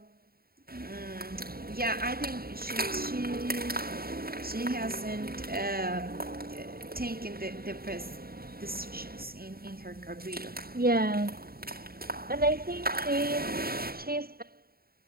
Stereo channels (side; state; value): left; late; 0.44 ms